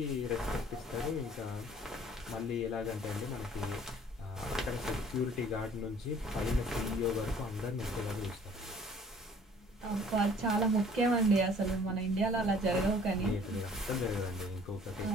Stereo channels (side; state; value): both; normal; correlation 0.54